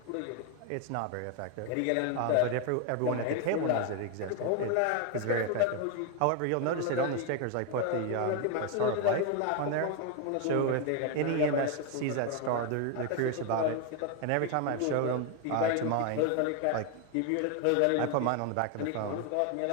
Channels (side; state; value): both; different; correlation 0.01